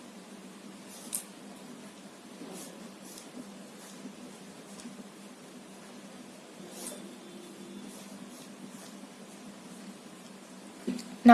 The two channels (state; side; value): identical; both; correlation 1.00